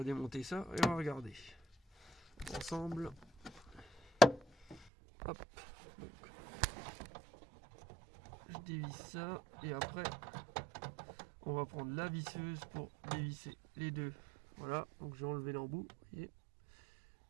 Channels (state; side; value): drops out; left; at 4.9 s